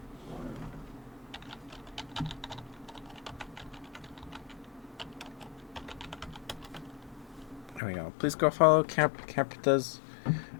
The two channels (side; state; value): right; drops out; at 7.8 s